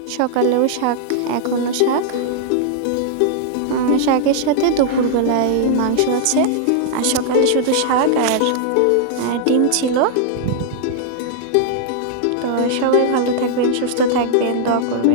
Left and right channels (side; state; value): both; different; correlation -0.01